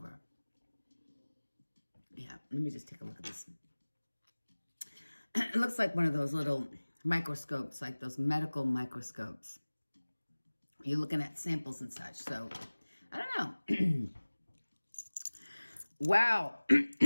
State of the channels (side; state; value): both; inverted; correlation -1.00